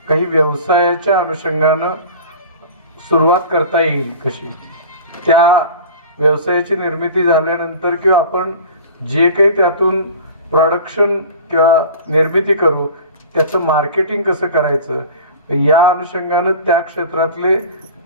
काही व्यवसायाच्या अनुषंगानं सुरुवात करता येईल कशी, त्या व्यवसायाची निर्मिती झाल्यानंतर किंवा आपण जे काही त्यातून प्रोडक्शन किंवा निर्मिती करू त्याचं मार्केटिंग कसं करायचं या अनुषंगानं त्या क्षेत्रातले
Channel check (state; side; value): inverted; both; correlation -0.39